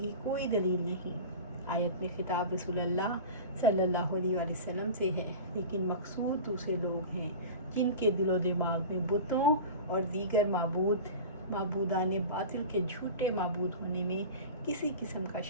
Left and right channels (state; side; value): inverted; both; correlation -0.32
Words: کوئی دلیل نہیں۔ آیت میں خطاب رسول اللہ صلی اللہ علیہ وآلہ وسلم سے ہے، لیکن مقصود دوسرے لوگ ہیں جن کے دل و دماغ میں بتوں اور دیگر معبودان باطل کے جھوٹے معبود ہونے میں کسی قسم کا